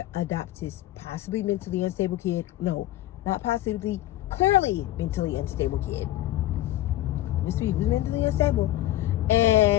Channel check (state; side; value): quieter; right; 15.0 dB